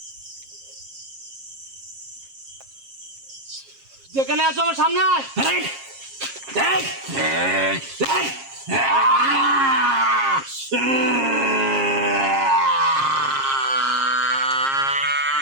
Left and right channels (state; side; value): late; left; 7.4 ms